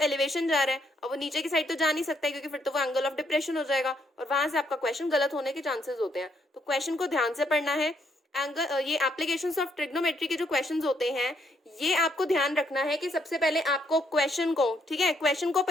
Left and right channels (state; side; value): normal; both; correlation 0.73